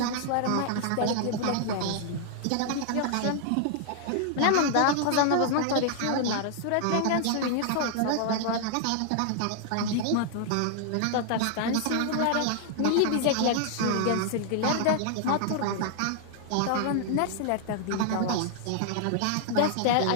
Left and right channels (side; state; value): both; different; correlation 0.00